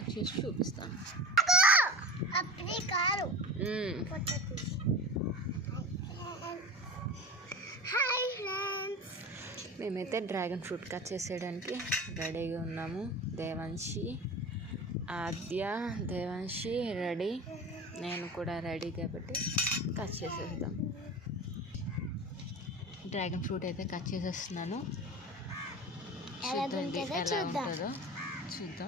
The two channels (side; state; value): both; normal; correlation 0.32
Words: చేసి చూపిస్తాను. హాయ్ ఫ్రెండ్స్, మేమైతే డ్రాగన్ ఫ్రూట్ కట్ చేసేయడానికి రెడీగా ఉన్నాము. దేవాన్షి రెడీ, నేను కూడా రెడీ కాబట్టి కట్ చేసేద్దాం. డ్రాగన్ ఫ్రూట్ అయితే కట్ చేసేస్తున్నాను. చూద్దాం ఎలా ఉంటుందో